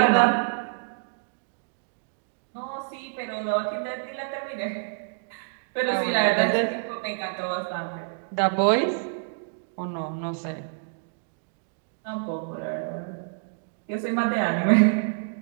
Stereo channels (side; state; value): left; silent; digital silence